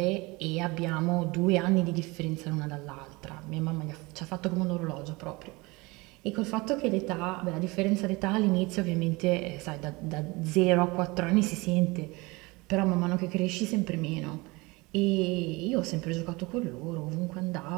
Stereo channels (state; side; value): quieter; left; 24.1 dB